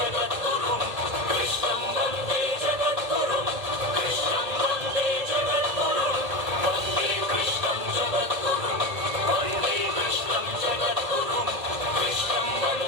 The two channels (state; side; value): late; left; 1.8 ms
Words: కృష్ణం వందే జగద్గురుం కృష్ణం వందే జగద్గురుం వందే కృష్ణం జగద్గురుం వందే కృష్ణం జగద్గురుం కృష్ణం